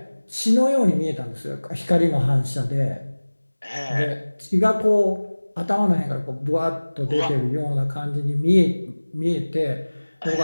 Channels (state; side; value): inverted; both; correlation -1.00